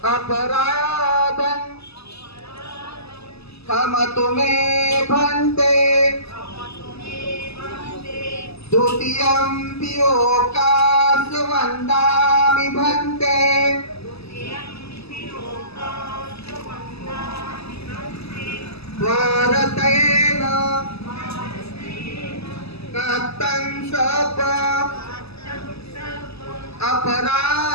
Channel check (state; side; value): late; right; 0.79 ms